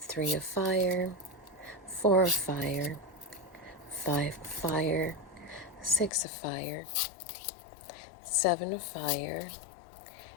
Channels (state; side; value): drops out; right; at 6.1 s